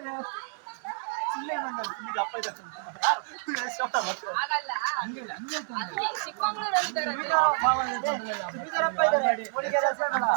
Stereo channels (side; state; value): left; silent; digital silence